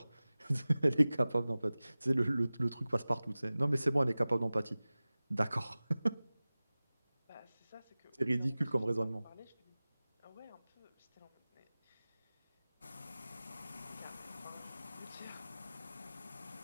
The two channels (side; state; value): both; inverted; correlation -0.98